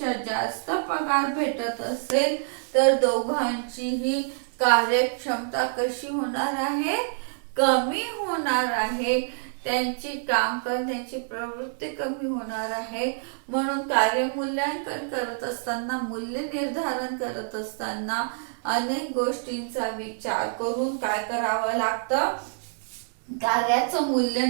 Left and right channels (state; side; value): silent; left; 61 dB below the other